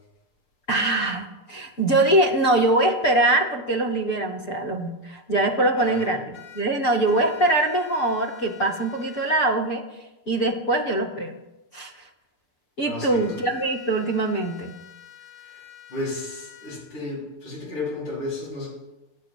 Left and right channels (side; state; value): right; late; 6.8 ms